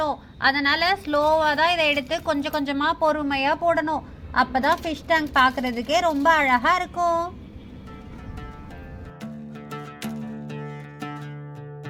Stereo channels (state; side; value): identical; both; correlation 1.00